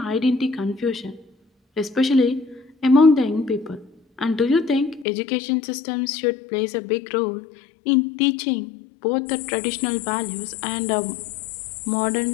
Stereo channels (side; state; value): right; drops out; at 5.1 s